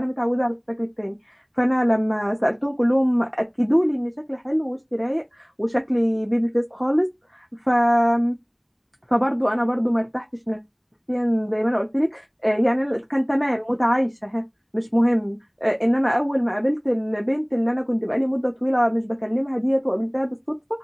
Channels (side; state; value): both; identical; correlation 1.00